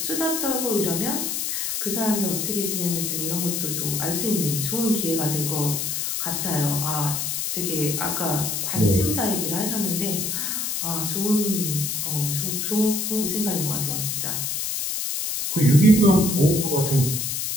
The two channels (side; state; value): left; noise; hiss, 1 dB below the sound